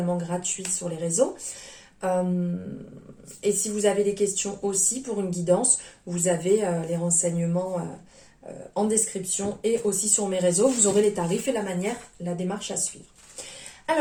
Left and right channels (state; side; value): identical; both; correlation 1.00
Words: gratuit sur les réseaux. Et si vous avez des questions aussi pour une guidance, vous avez les renseignements en description et aussi sur mes réseaux. Vous aurez les tarifs et la démarche à suivre.